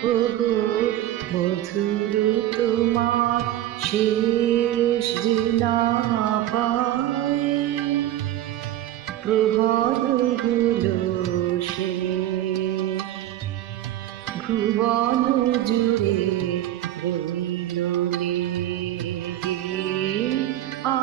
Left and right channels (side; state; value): left; quieter; 13.2 dB